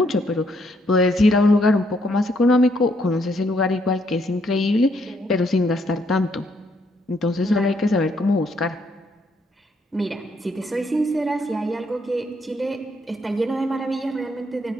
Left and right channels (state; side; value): normal; both; correlation 0.72